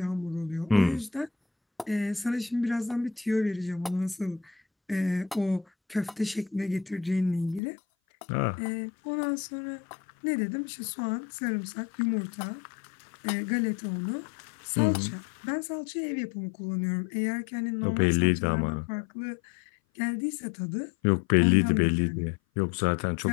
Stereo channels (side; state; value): right; drops out; at 7.6 s